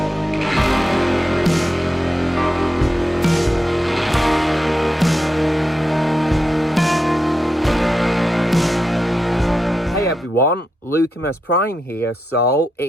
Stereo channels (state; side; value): normal; both; correlation 0.87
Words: Hey everyone, Lucamus Prime here. So,